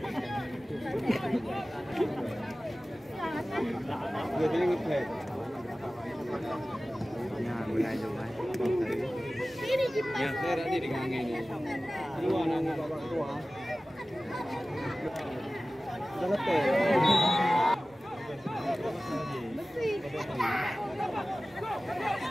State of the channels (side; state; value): right; noise; rumble, 29 dB below the sound